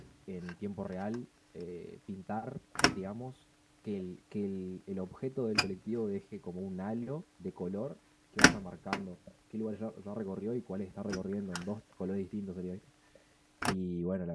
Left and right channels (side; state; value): both; identical; correlation 1.00